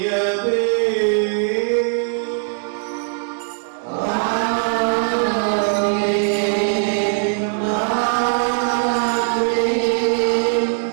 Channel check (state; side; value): silent; left; 66 dB below the other